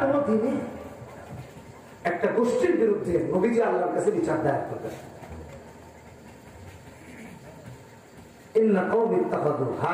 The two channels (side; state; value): both; identical; correlation 1.00